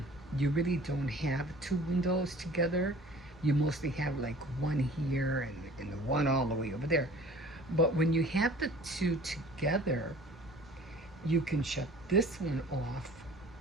you really don't have two windows together. You mostly have like one here and the one all the way over there. But when you have the two together, you can shut this one off,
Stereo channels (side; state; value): both; normal; correlation 0.47